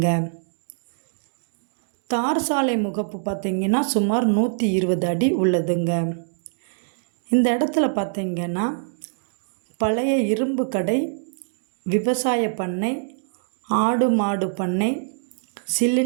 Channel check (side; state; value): left; silent; digital silence